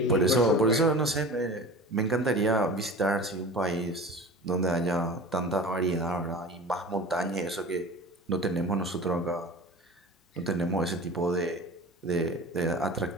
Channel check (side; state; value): both; normal; correlation 0.37